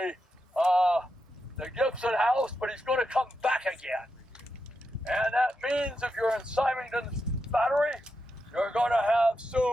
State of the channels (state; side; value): normal; both; correlation 0.86